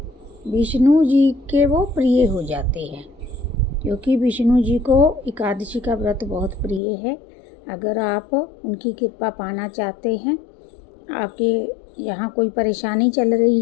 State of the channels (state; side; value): drops out; right; at 6.8 s